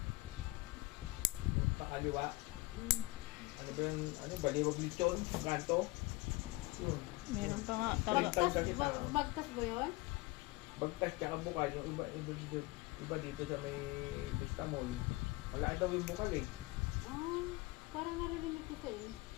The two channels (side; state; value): right; quieter; 21.4 dB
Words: Yung pakaliwa. Ano ba yung, ano, Baliwag Lechon, kanto. Yun. Meron pa nga. Taga, Bagtas ba yun? Bagtas tsaka Bukal, yung iba dito sa may Vista Mall. Wala daw yung Bukal eh. Ah, parang narinig ko sa'yo.